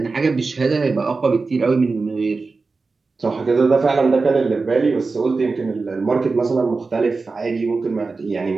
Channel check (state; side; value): quieter; left; 4.1 dB